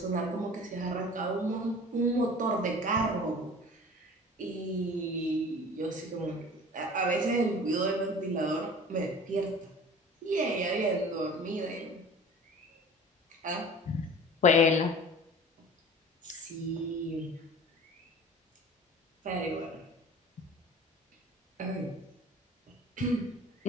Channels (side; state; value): both; normal; correlation 0.42